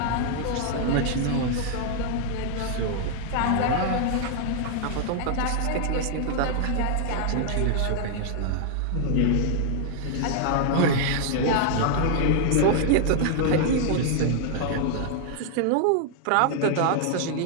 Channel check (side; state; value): both; different; correlation 0.00